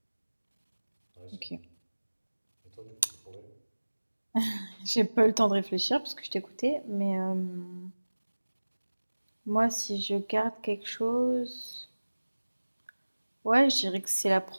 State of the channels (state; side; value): inverted; both; correlation -1.00